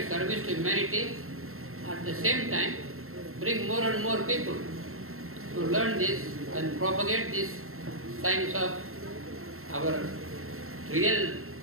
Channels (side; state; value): left; late; 0.62 ms